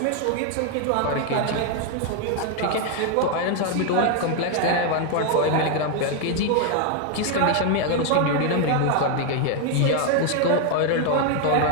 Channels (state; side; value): different; both; correlation 0.01